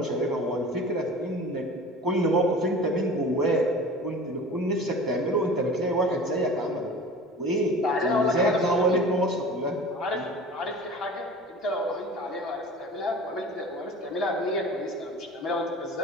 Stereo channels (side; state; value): both; normal; correlation 0.39